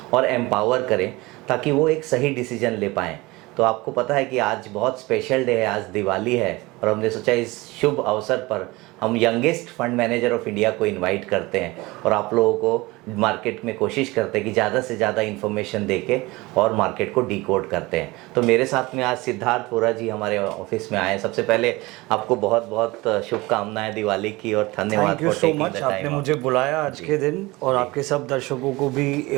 और एम्पावर करें ताकि वो एक सही डिसीजन ले पाएँ। तो आपको पता है कि आज बहुत स्पेशल डे है, आज दिवाली है और हमने सोचा इस शुभ अवसर पर हम youngest fund manager of India को इनवाइट करते हैं और आप लोगों को मार्केट में कोशिश करते हैं कि ज़्यादा से ज़्यादा इन्फॉर्मेशन देके और मार्केट को डिकोड करते हैं। तो मेरे साथ में आज सिद्धार्थ वोरा जी हमारे ऑफिस में आए। सबसे पहले आपको बहुत बहुत शुभकामनाएं दिवाली की और धन्यवाद। थैंक यू सो मच, आपने मुझे बुलाया आज के दिन और आपके सब दर्शकों को भी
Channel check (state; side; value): quieter; left; 21.9 dB